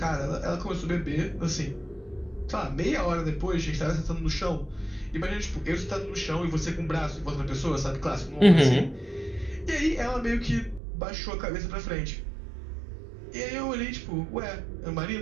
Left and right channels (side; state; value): left; drops out; at 10.8 s